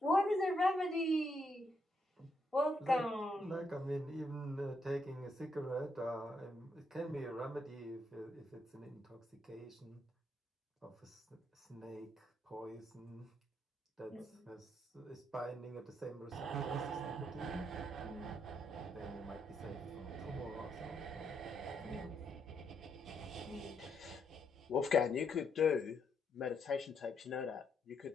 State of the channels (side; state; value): both; normal; correlation 0.77